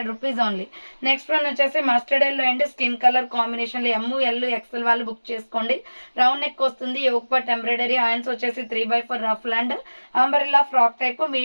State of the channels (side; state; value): both; inverted; correlation -1.00